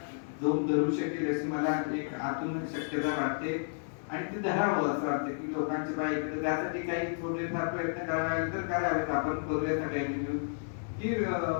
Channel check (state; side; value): silent; right; digital silence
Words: जोम धरू शकेल अशी मला एक आतून शक्यता वाटते आणि ते धरावं असं वाटतं की लोकांच्या बाईकडे त्यासाठी काही थोडेफार प्रयत्न करावे तर करावेत. आपण करूया सगळ्यांनी मिळून की